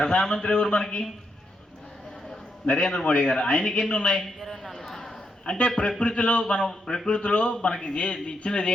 ఎవరు మనకి? నరేంద్ర మోడీ గారు. ఆయనకి ఎన్ని ఉన్నాయి? 24. అంటే ప్రకృతిలో మనకి ఇచ్చినది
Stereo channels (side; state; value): both; normal; correlation 0.81